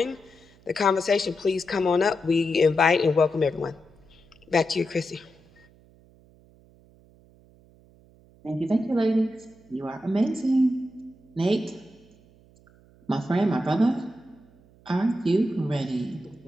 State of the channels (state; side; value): noise; right; hum, 28 dB below the sound